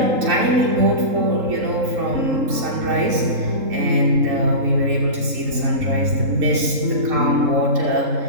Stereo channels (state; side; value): late; left; 3.7 ms